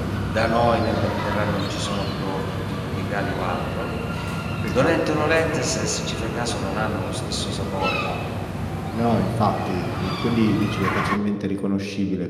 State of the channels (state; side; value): identical; both; correlation 1.00